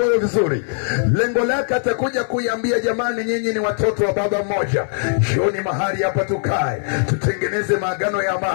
vizuri. Lengo lake atakuja kuiambia, jamani, nyinyi ni watoto wa baba mmoja, jioni mahali hapa tukae, tutengeneze maagano ya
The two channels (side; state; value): right; silent; 66 dB below the other